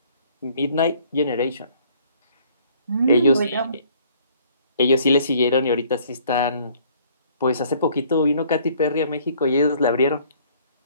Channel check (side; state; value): both; inverted; correlation -0.59